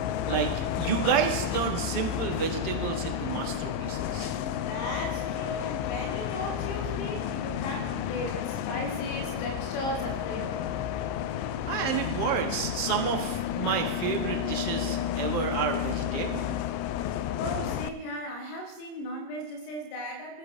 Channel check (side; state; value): right; late; 30 ms